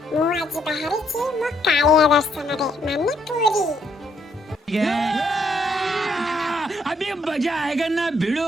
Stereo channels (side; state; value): both; normal; correlation 0.72